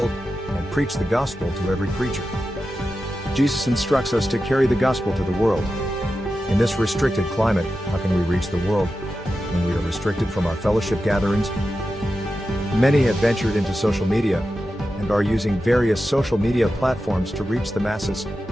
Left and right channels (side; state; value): both; normal; correlation 0.91